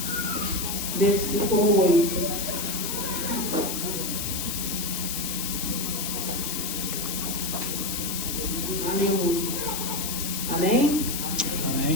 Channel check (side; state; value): left; noise; hiss, 3 dB below the sound